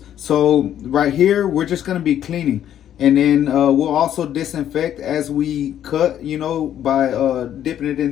So right here, we're just gonna be cleaning, and then we'll also disinfect as we cut, by dipping it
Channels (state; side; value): quieter; right; 10.6 dB